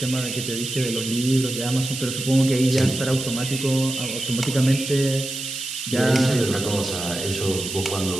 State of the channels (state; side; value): noise; right; hiss, 7 dB below the sound